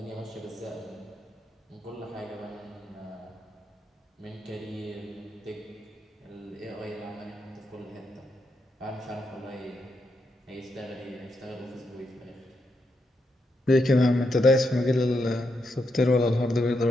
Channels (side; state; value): both; normal; correlation 0.82